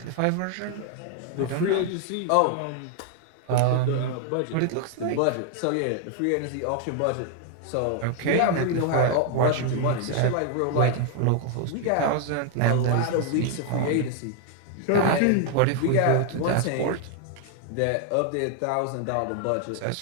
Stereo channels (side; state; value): both; different; correlation 0.00